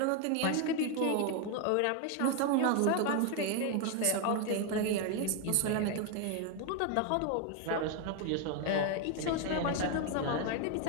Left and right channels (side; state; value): both; different; correlation 0.01